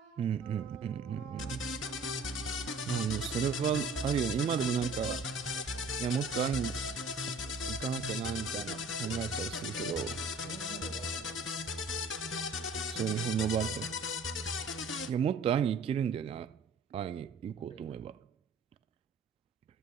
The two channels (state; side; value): quieter; left; 3.4 dB